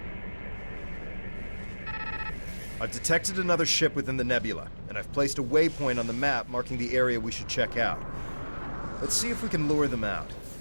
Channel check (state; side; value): inverted; both; correlation -1.00